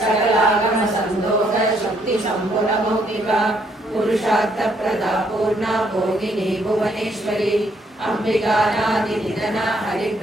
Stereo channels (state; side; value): normal; both; correlation 0.70